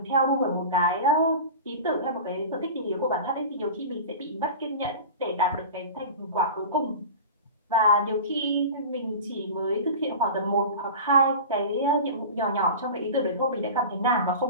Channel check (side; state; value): both; inverted; correlation -0.33